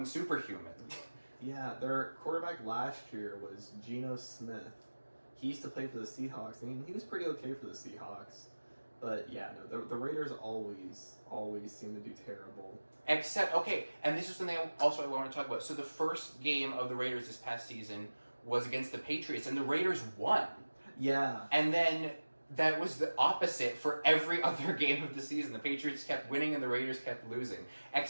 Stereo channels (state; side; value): inverted; both; correlation -1.00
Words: superhuman. Yeah, their quarterback last year was Geno Smith. He used to play for the Seahawks, and he was pretty okay for the Seahawks. But yeah, no, the Raiders always seem to do terrible. Except, okay, and this is something I want to talk about. So the first game of the Raiders this past season was against the Patriots, and the Raiders won. Yeah. And then that was the opposite for every other game of the season. The Patriots kept winning, and the Raiders kept losing.